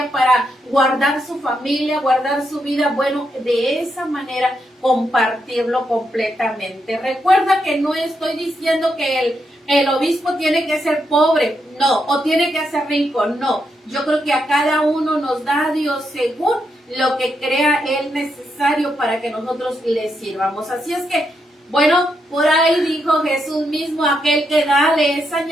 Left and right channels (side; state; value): both; normal; correlation 0.81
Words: para guardar su familia, guardar su vida, bueno, de esa manera compartirlo completamente. Recuerda que no estoy diciendo que el obispo tiene que ser pobre, no, o tiene que ser rico, no. Yo creo que a cada uno nos da Dios según lo que crea Él necesario para que nosotros le sirvamos. Así es que, bueno, por ahí dijo Jesús mismo, aquel que da le es